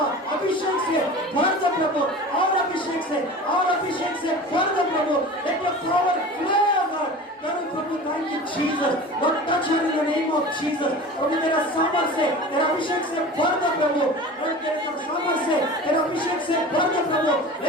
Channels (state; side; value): normal; both; correlation 0.36